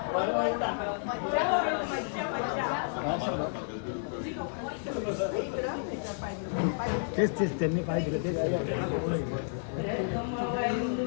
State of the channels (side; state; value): right; silent; digital silence